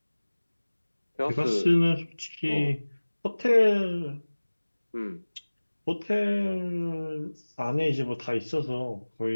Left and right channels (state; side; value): inverted; both; correlation -1.00